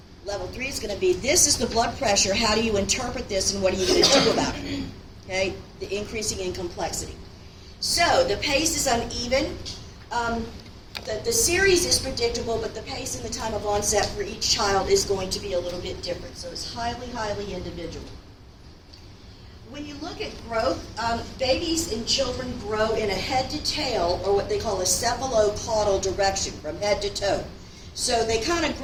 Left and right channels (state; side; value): identical; both; correlation 1.00